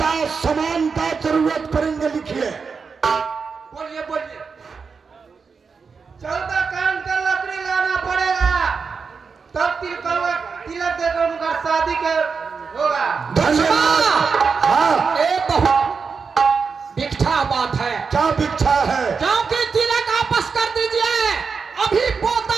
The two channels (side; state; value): left; quieter; 5.3 dB